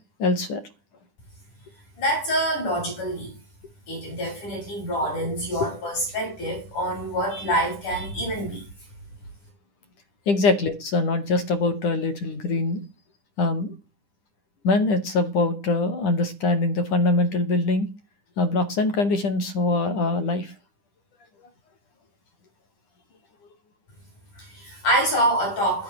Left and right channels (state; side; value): late; right; 10 ms